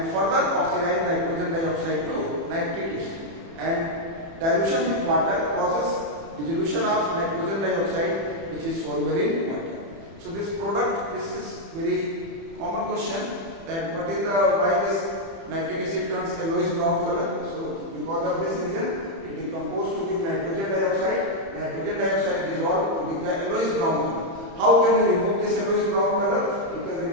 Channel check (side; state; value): left; late; 30 ms